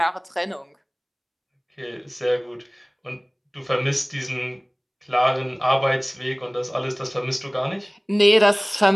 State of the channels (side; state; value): both; identical; correlation 1.00